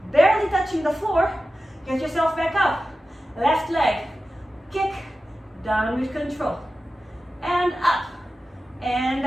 Barely touching the floor. Get yourself back up. Left leg. Kick. Down with control. And up. And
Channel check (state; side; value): normal; both; correlation 0.94